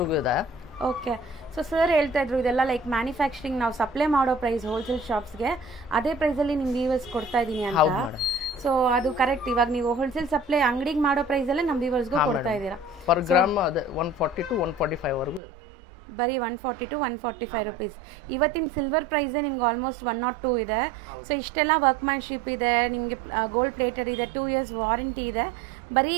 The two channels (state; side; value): drops out; left; at 15.4 s